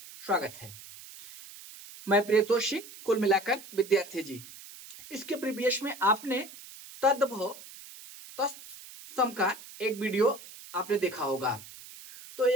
स्वागत है। मैं प्रियतोषी, कुल मिलाकर विद्यार्थी जी। इसके प्रीवियस में आपने तद्भव तत्सम का एक वीडियो आपने देखा होगा। तो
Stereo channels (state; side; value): noise; right; hiss, 17 dB below the sound